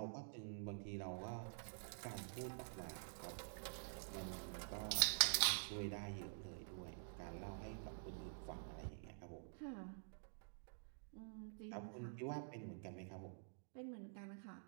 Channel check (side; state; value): left; silent; digital silence